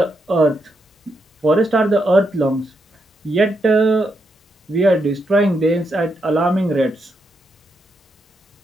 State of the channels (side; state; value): both; normal; correlation 0.81